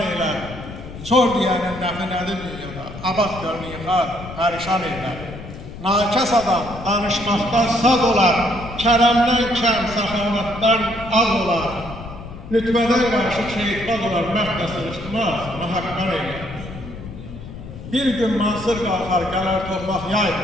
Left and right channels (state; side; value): noise; left; rumble, 12 dB below the sound